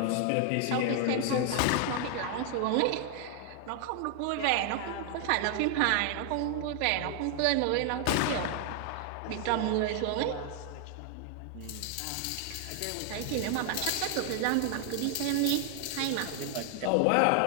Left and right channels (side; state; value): both; different; correlation 0.00